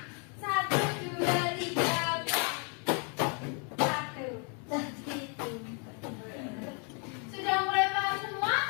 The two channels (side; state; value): right; quieter; 37.7 dB